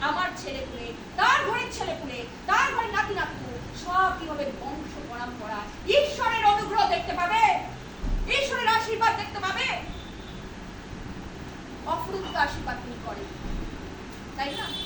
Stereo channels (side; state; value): both; identical; correlation 1.00